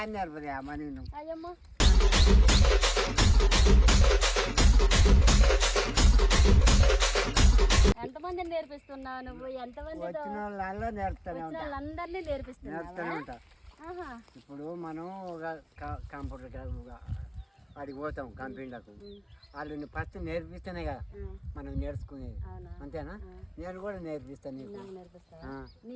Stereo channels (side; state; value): both; identical; correlation 1.00